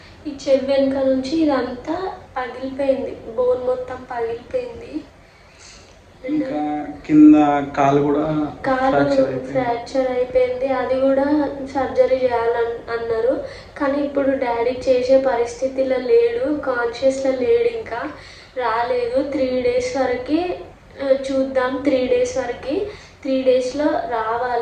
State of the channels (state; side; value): identical; both; correlation 1.00